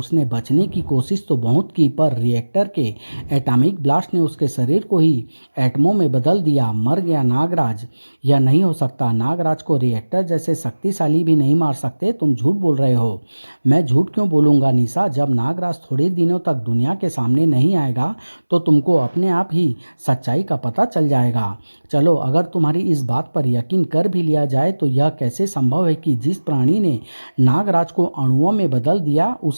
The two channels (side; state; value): both; inverted; correlation -1.00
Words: बचने की कोशिश तो बहुत की, पर रिएक्टर के एटॉमिक ब्लास्ट ने उसके शरीर को ही एटमों में बदल दिया। मर गया नागराज। यह नहीं हो सकता। नागराज को रिएक्टर जैसे शक्तिशाली भी नहीं मार सकते। तुम झूठ बोल रहे हो। मैं झूठ क्यों बोलूँगा निशा? जब नागराज थोड़े दिनों तक दुनिया के सामने नहीं आएगा तो तुमको अपने आप ही सच्चाई का पता चल जाएगा। चलो, अगर तुम्हारी इस बात पर यकीन कर भी लिया जाए तो यह कैसे संभव है कि जिस प्राणी ने नागराज को अणुओं में बदल दिया